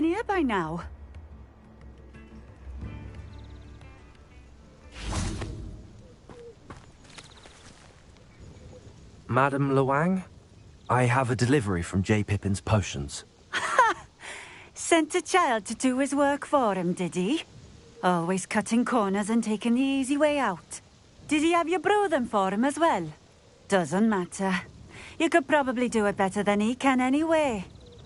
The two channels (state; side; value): identical; both; correlation 1.00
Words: here by now. Madam Luang, I have a delivery from J. Pippin's potions. Sent a child to do his work for him, did he? Always cutting corners and taking the easy way out. Did he have you brew them for him as well? Doesn't matter. You could probably do it better than he can anyway.